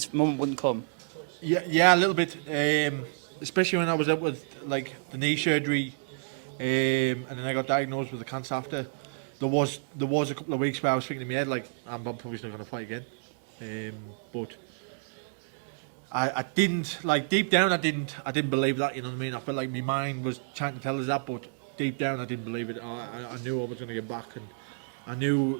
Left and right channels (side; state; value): left; silent; digital silence